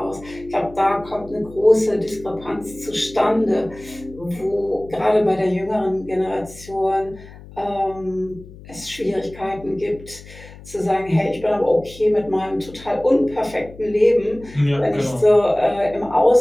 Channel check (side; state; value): left; noise; hum, 18 dB below the sound